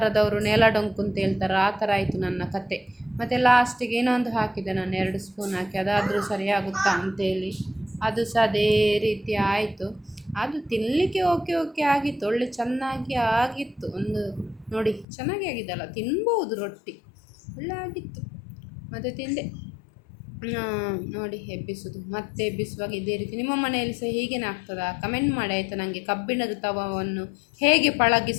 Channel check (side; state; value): right; drops out; at 15.1 s